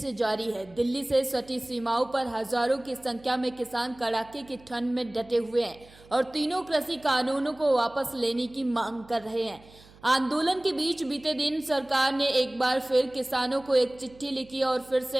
जारी है। दिल्ली से सटी सीमाओं पर हजारों की संख्या में किसान कड़ाके की ठंड में डटे हुए हैं और तीनों कृषि कानूनों को वापस लेने की मांग कर रहे हैं। आंदोलन के बीच बीते दिन सरकार ने एक बार फिर किसानों को एक चिट्ठी लिखी और फिर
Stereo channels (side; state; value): right; noise; hum, 24 dB below the sound